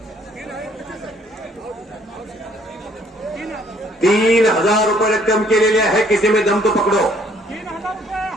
₹3,000 रक्कम केलेली आहे. किसी में दम तो पकडो.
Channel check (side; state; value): both; normal; correlation 0.62